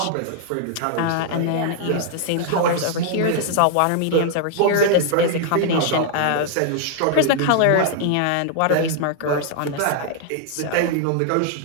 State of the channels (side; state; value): both; different; correlation 0.00